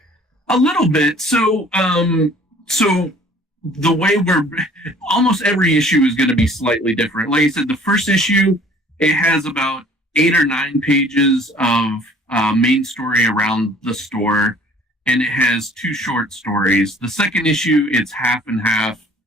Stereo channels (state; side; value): normal; both; correlation 0.53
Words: A little bit. So the way almost every issue is going to be slightly different. Like I said, the first issue, it has about 8 or 9 pages of main story around the store, and it has 2 short stories. The second issue, it's half and half